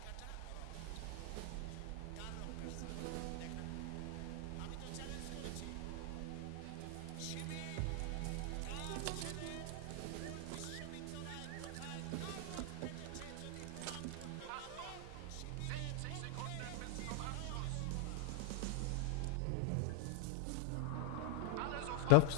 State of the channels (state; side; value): different; both; correlation 0.00